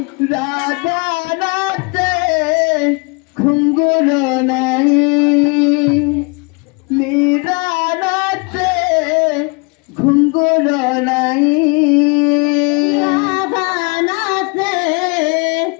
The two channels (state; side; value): quieter; right; 31.8 dB